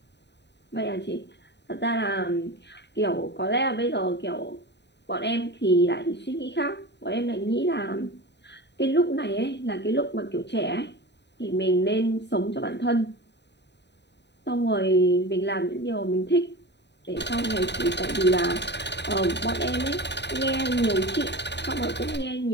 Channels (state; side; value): late; right; 0.50 ms